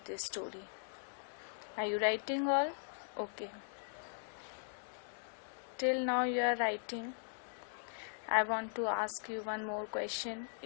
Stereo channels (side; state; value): right; silent; digital silence